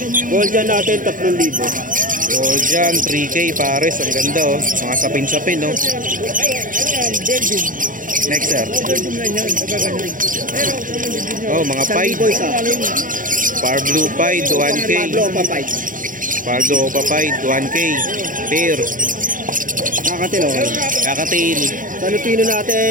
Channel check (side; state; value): left; late; 0.39 ms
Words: Gold dyan natin, 3,000. So dyan 3K pares. Ang ganda oh. Mga sapin-sapin oh. Next sir. Oh mga Pied. Boys ah. Power Blue Pied 1K. Pablo pa 5. Power Blue Opa Pied 1K. Pair. Nakakatil oh. Kakatail. Sa Lutino